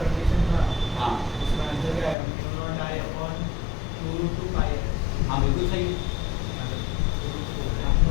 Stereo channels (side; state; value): right; drops out; at 2.1 s